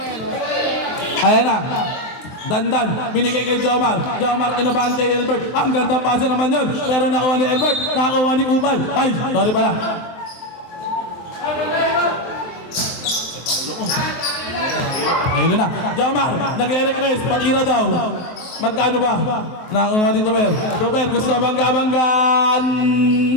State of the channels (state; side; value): late; right; 23 ms